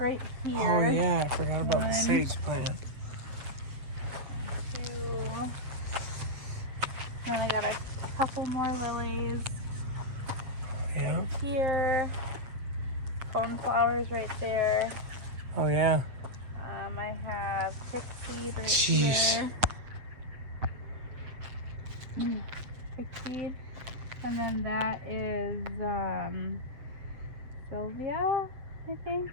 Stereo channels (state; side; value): late; left; 7.8 ms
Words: here. Oh, yeah, I forgot about the One. sage plant. 2. Then I got a couple more lilies Yeah. here. Coneflowers right there. Oh, yeah. I have chickseed right Jeez. here. Chickseed. And then that is Sylvia, I think.